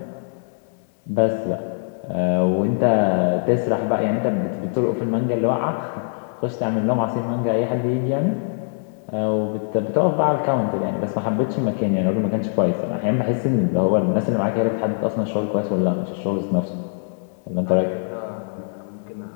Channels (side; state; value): right; silent; 64 dB below the other